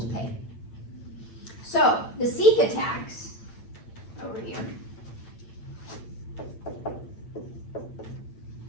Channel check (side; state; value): right; late; 8.8 ms